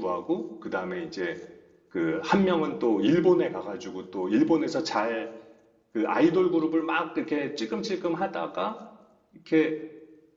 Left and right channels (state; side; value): identical; both; correlation 1.00